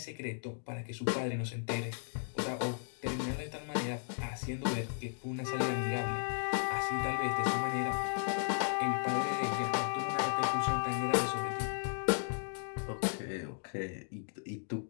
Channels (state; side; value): silent; right; digital silence